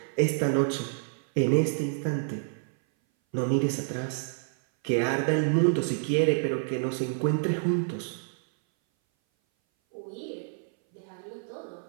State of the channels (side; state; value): left; silent; 58 dB below the other